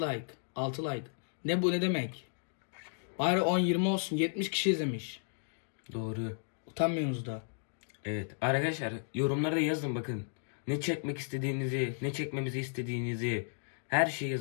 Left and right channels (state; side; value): silent; right; digital silence